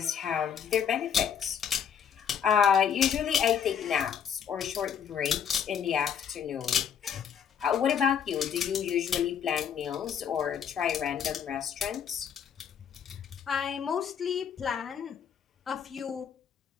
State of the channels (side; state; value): right; quieter; 8.0 dB